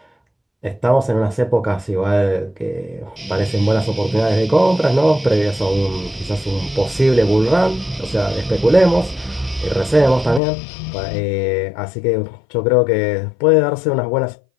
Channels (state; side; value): drops out; right; at 10.4 s